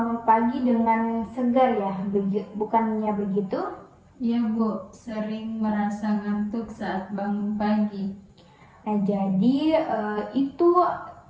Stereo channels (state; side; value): identical; both; correlation 1.00